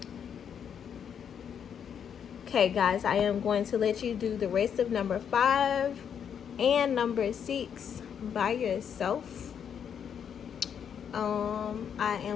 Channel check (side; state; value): right; quieter; 8.0 dB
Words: Okay, guys, I am going to let you do the rest of number 5 and number 6 by yourself. I